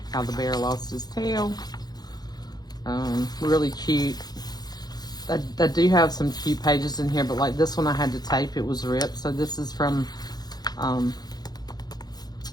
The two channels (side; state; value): right; late; 0.19 ms